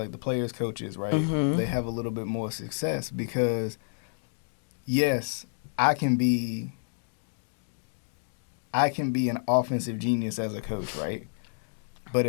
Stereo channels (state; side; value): silent; right; digital silence